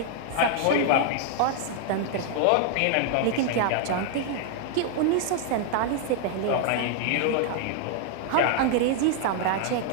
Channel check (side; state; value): both; different; correlation 0.00